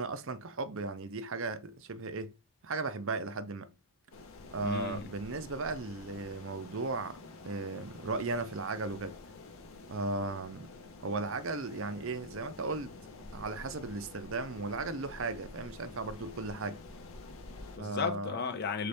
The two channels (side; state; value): both; normal; correlation -0.12